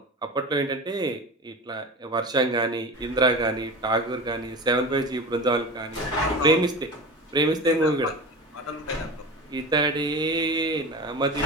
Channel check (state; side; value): normal; both; correlation 0.31